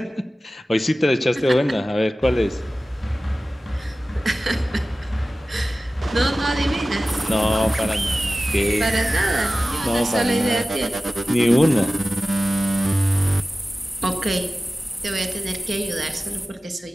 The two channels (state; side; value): normal; both; correlation 0.96